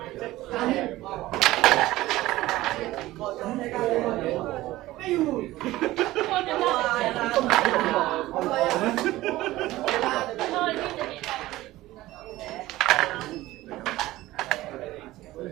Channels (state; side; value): quieter; left; 17.0 dB